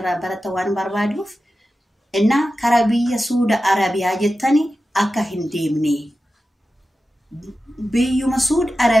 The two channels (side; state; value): both; normal; correlation 0.93